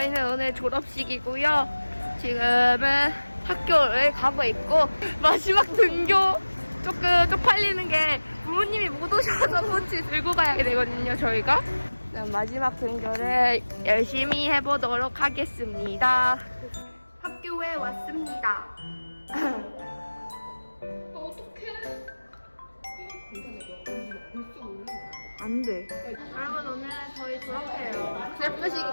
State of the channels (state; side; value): inverted; both; correlation -1.00